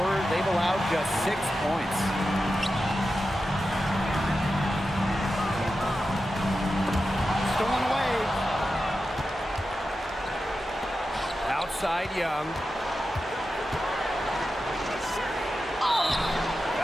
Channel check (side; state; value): both; normal; correlation 0.91